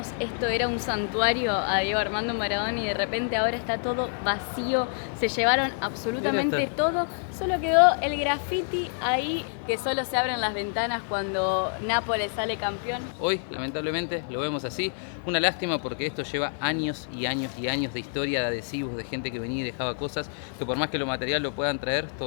esto era un santuario a Diego Armando Maradona y de repente ahora está todo vacío? Se llevaron absolutamente todo, solo quedó el graffiti ahí que solo se abren las ventanas cuando Nápoles sale campeón. Hoy, lamentablemente, lo vemos así. Una lástima porque esto lleva años y años y años de historia, de adhesivos, de gente que venía y dejaba cosas, que por más que lo material lo puedan traer,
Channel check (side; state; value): right; silent; 60 dB below the other